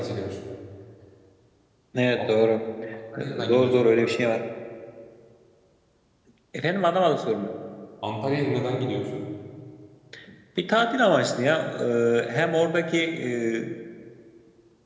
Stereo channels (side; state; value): both; identical; correlation 1.00